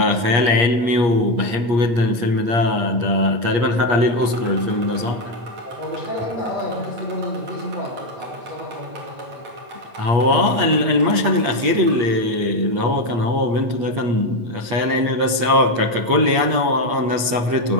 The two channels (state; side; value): late; left; 8.5 ms